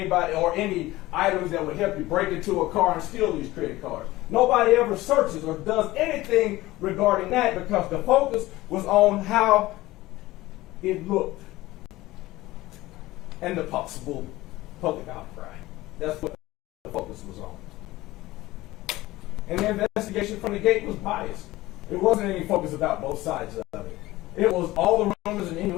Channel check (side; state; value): right; quieter; 18.0 dB